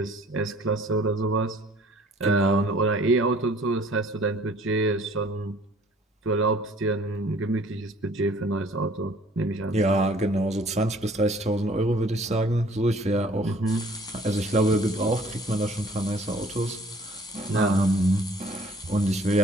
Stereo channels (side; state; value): both; normal; correlation 0.55